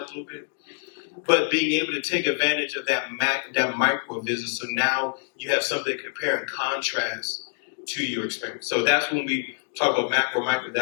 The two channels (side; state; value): right; silent; digital silence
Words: little bit. But being able to take advantage of that micro visit, so now you have something to compare and contrast to your experience. So that's when we talk about macro, micro,